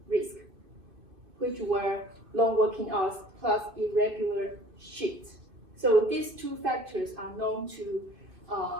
risk, which were long working hours plus irregular shifts. So these two factors are known to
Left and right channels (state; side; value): late; left; 2.5 ms